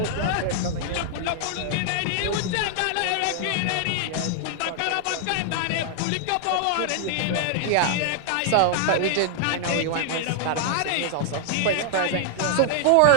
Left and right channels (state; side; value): different; both; correlation 0.00